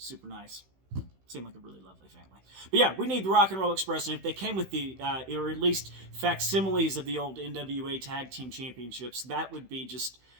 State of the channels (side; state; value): left; late; 16 ms